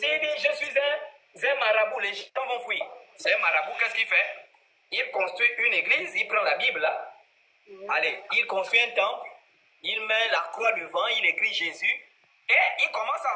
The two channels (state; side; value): identical; both; correlation 1.00